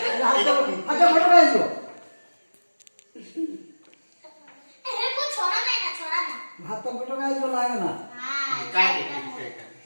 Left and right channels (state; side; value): inverted; both; correlation -1.00